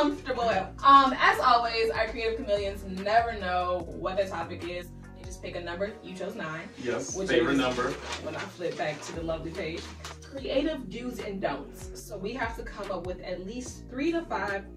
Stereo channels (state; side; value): identical; both; correlation 1.00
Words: As always, our creative chameleons never know what the topic is. They just pick a number. You chose 9. Yes. Which Favorite is, number. When I flip back to the lovely page, creative do's and don'ts. So we have to come up with at least 3 to 5